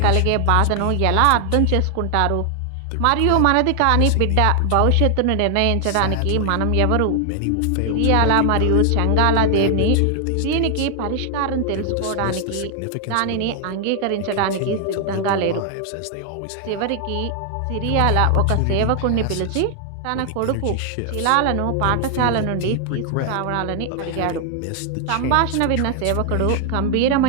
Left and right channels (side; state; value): both; different; correlation 0.00